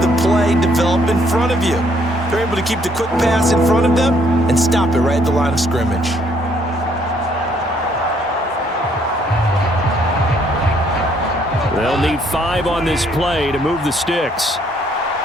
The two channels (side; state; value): both; normal; correlation 0.67